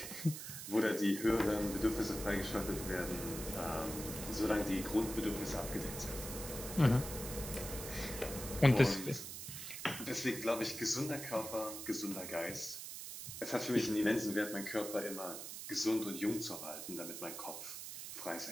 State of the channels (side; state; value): right; noise; hiss, 8 dB below the sound